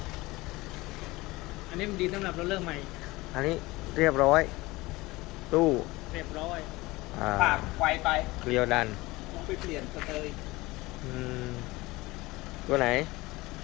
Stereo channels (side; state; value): right; quieter; 20.8 dB